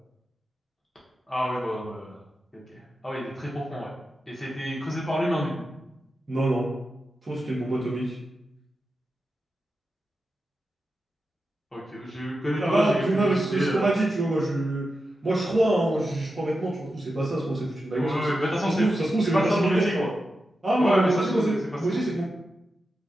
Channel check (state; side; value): normal; both; correlation 0.90